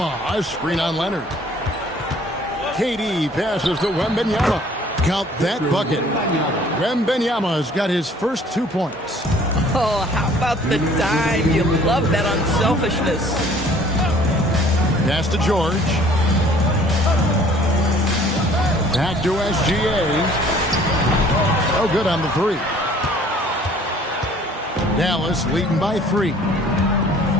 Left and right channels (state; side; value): normal; both; correlation 0.55